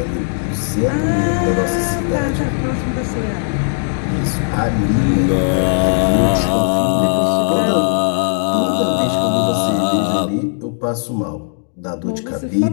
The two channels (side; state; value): right; silent; digital silence